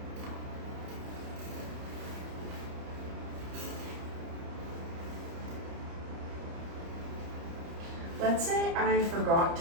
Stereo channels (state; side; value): late; left; 30 ms